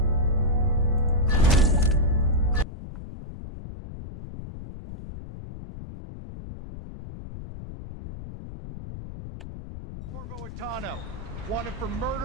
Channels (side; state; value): left; noise; rumble, 12 dB below the sound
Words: Corvo Atano, wanted for